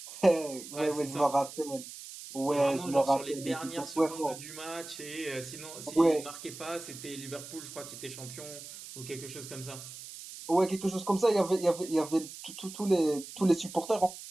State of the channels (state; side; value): noise; right; hiss, 13 dB below the sound